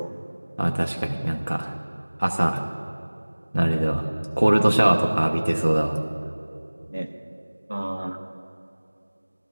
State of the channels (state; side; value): inverted; both; correlation -1.00